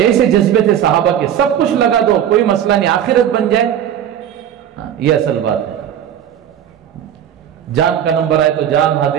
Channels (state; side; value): quieter; left; 9.9 dB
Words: جذبے تھے صحابہ کے، سب کچھ لگا دو کوئی مسئلہ نہیں، آخرت بن جائے. یہ اصل بات ہے. جان کا نمبر آئے تو جان